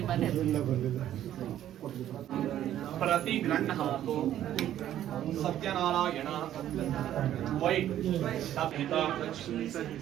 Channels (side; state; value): left; quieter; 11.8 dB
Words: ಮನೆ प्रति गृह्णातु सत्यनारायण वै